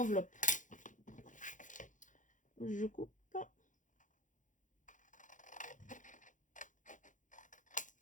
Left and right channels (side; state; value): right; late; 0.37 ms